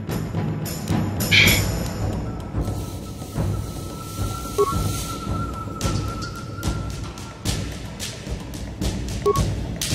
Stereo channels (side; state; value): both; identical; correlation 1.00